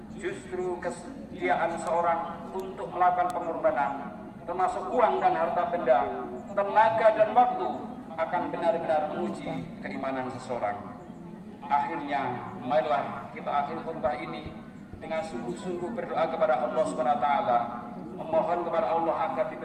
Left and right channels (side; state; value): both; identical; correlation 1.00